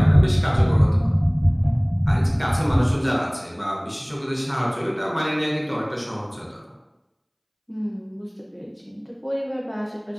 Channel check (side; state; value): both; identical; correlation 1.00